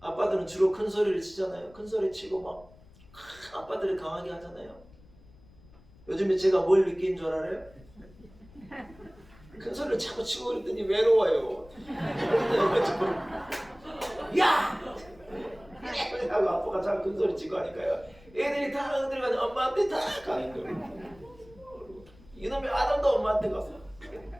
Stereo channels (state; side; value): noise; left; rumble, 25 dB below the sound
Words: 아빠들은 주로 큰 소리를 치잖아요. 큰 소리 치고 막 아빠들이 강하게 하잖아요. 요즘에 제가 뭘 느낀 줄 알아요? 큰 소리를 자꾸 치고 그랬더니 외로워요. 야! 하고 아빠가 자꾸 큰 소리 치고 하니까요, 애들이 다 들어가서 엄마한테 다 가는 거예요. 이놈의 아담도 엄마한테 가서.